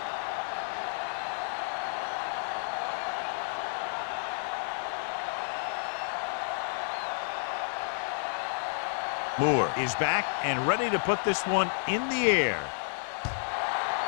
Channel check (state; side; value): silent; right; digital silence